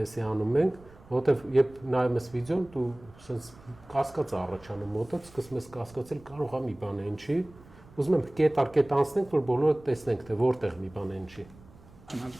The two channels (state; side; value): noise; right; rumble, 23 dB below the sound